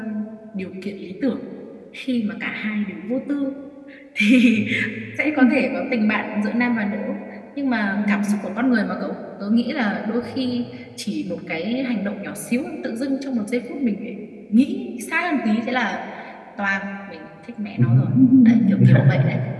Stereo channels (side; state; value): both; identical; correlation 1.00